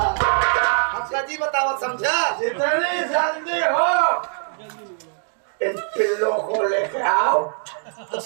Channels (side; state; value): left; silent; 64 dB below the other